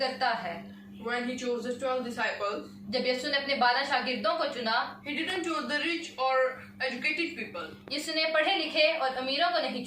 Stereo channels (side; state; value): both; identical; correlation 1.00